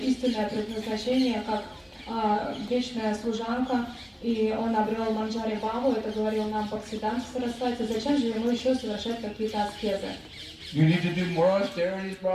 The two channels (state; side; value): identical; both; correlation 1.00